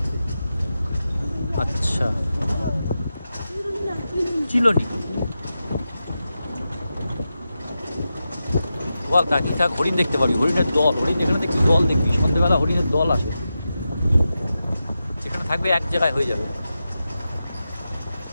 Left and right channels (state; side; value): inverted; both; correlation -0.90